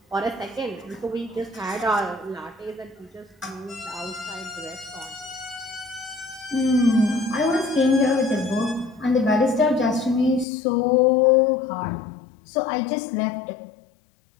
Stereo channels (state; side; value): drops out; right; at 10.5 s